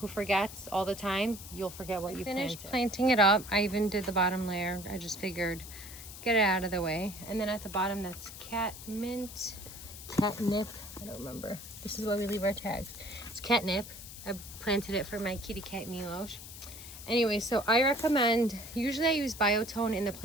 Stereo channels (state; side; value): noise; left; hiss, 13 dB below the sound